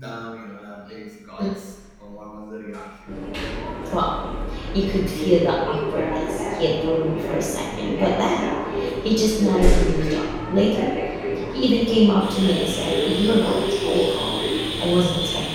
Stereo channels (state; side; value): identical; both; correlation 1.00